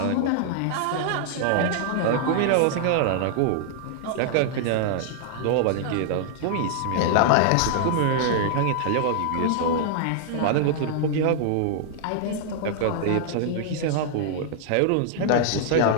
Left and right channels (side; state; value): both; different; correlation -0.01